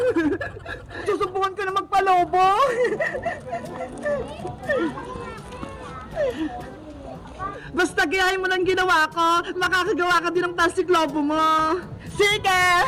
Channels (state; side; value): identical; both; correlation 1.00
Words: Susubukan ko na magpalobo! Basta gayahin mo lang ginawa ko, makakagawa ka din ng plastic lobo mo! Sige!